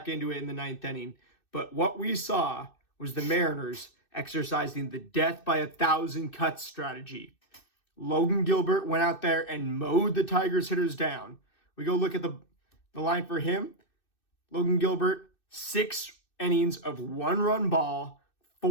into it in the ninth inning, but what we saw was the Mariners exercising the death by 1,000 cuts strategy. Logan Gilbert went out there and mowed the Tigers hitters down. We go look at the line for him. Logan Gilbert, 6 innings of 1-run ball,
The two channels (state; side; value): late; right; 2.6 ms